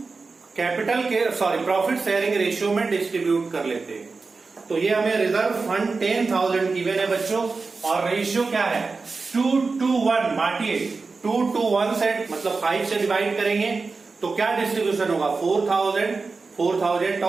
कैपिटल के प्रॉफिट शेयरिंग रेशियो में डिस्ट्रीब्यूट कर लेते हैं। तो ये हमें रिजर्व फंड 10,000 गिवन है बच्चों, और रेशियो क्या है 2:1, बांटिए 2:1 से, मतलब 5 से डिवाइड करेंगे तो क्या डिस्ट्रीब्यूशन होगा 4,000, 4,000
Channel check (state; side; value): quieter; left; 4.2 dB